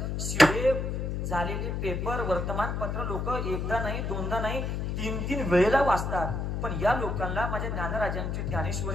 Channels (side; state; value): left; noise; hum, 2 dB below the sound